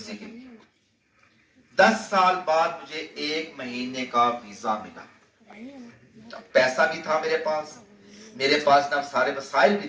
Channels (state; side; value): identical; both; correlation 1.00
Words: کے لیے۔ 10 سال بعد مجھے 1 مہینے کا ویزا ملا، پیسہ بھی تھا میرے پاس نا سارے وسائل بھی